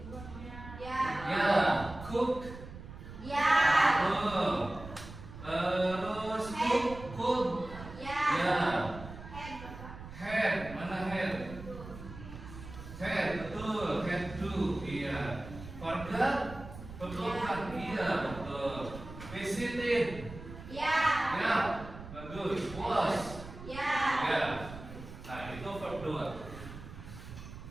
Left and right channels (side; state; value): right; noise; rumble, 13 dB below the sound